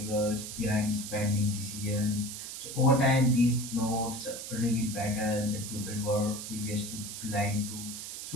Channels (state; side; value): noise; right; hiss, 8 dB below the sound